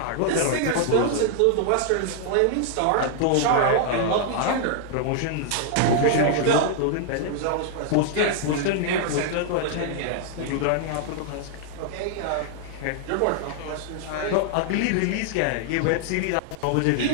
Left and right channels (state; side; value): different; both; correlation -0.01